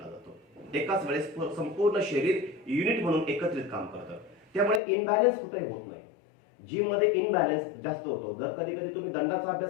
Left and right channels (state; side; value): drops out; right; at 4.8 s